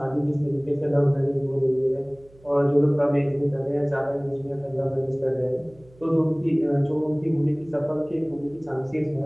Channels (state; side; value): noise; right; hum, 27 dB below the sound